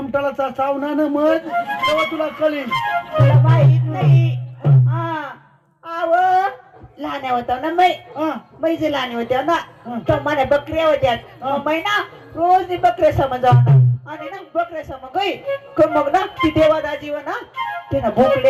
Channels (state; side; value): identical; both; correlation 1.00